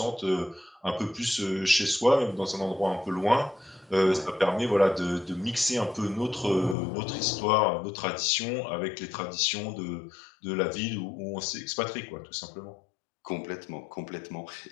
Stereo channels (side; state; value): right; drops out; at 6.8 s